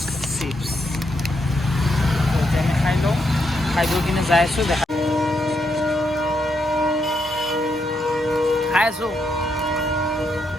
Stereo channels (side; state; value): both; normal; correlation 0.79